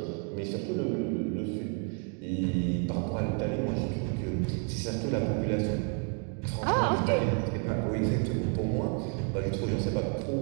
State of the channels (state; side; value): quieter; left; 38.4 dB